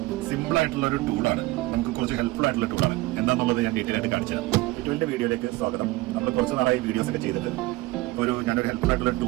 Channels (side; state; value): left; quieter; 19.7 dB